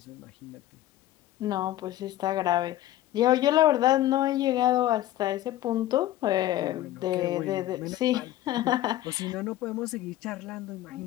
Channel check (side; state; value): right; quieter; 14.1 dB